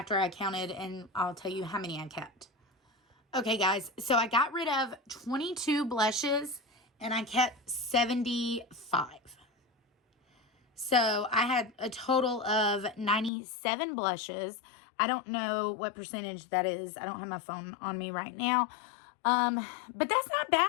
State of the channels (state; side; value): drops out; right; at 13.3 s